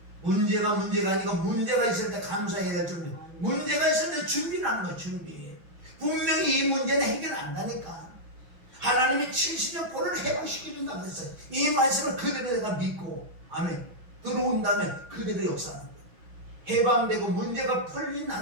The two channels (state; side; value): late; left; 6.1 ms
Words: 문제가 아니고 문제가 있을 때 감사해야 될 줄, 문제가 있을 때 준비를 하는 거예요. 준비. 분명히 이 문제는 해결 안 가니까 하나님이 70년 포로를 해방시켜준다고 했어요. 이 말씀을 그대로 내가 믿고 아멘 들어온다면 그대로 역사하는 거예요. 해방되고 문제가